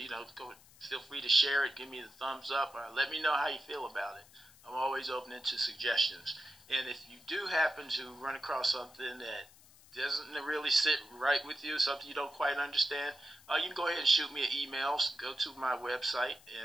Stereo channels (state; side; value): noise; left; hiss, 24 dB below the sound